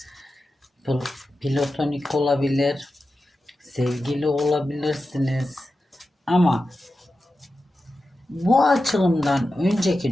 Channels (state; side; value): normal; both; correlation 0.92